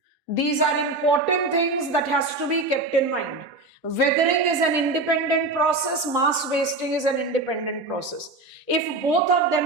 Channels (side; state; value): left; quieter; 3.1 dB